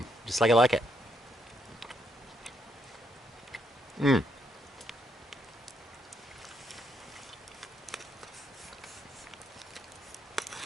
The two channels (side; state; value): both; normal; correlation 0.75